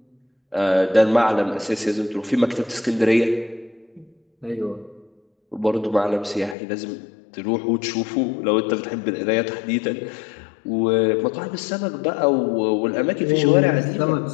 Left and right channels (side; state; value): right; drops out; at 6.6 s